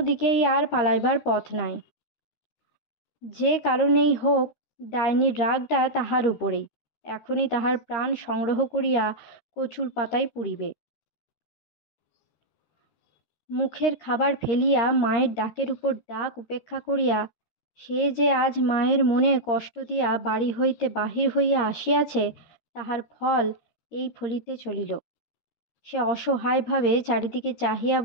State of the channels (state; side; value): late; right; 13 ms